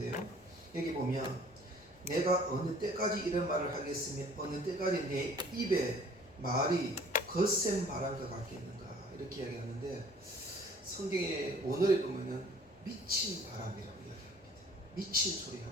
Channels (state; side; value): noise; left; rumble, 29 dB below the sound